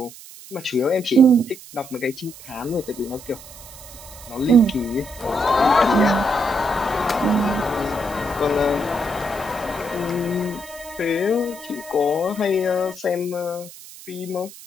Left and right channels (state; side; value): noise; right; hiss, 17 dB below the sound